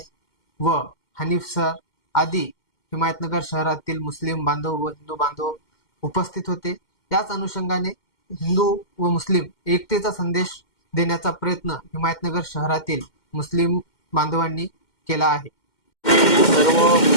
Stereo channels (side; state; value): right; late; 2.1 ms